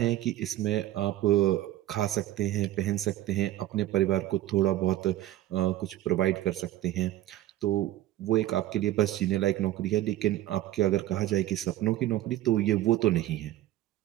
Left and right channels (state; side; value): quieter; left; 14.3 dB